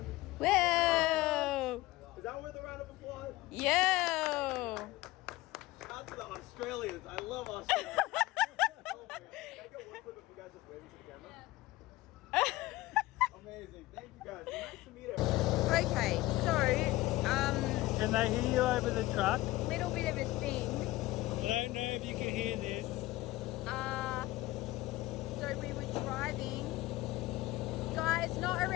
Whoa! Is that worth a round of applause? Yo! Shout out to the Australians. I love Australia. Oh my God. Can I get one clip of you guys just waving to the camera? Amazing. Thank you guys. Nice to meet everyone. Okay, so, Can they hear you over the truck? little bit of a thing. I don't know if you can hear this. So we were driving. Guys, not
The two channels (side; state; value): right; quieter; 18.4 dB